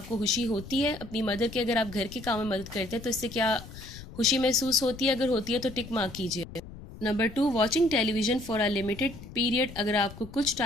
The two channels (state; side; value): noise; left; rumble, 15 dB below the sound